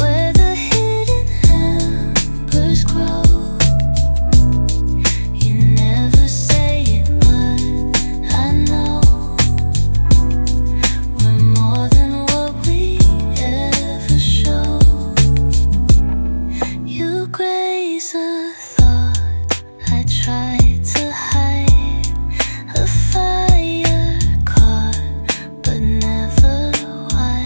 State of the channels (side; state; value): both; inverted; correlation -1.00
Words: the hidden embers grow. You never say it, but I know we're more than what we ever show. You graze a thought I tried to hide, a fire caught but never